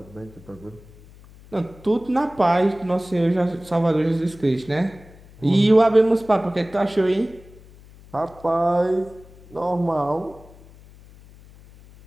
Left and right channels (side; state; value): left; noise; hum, 23 dB below the sound